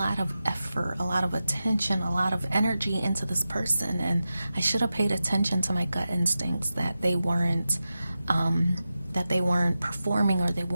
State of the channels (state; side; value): inverted; both; correlation -0.92